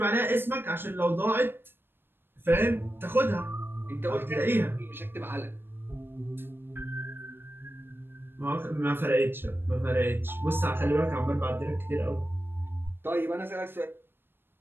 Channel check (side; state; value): left; late; 0.10 ms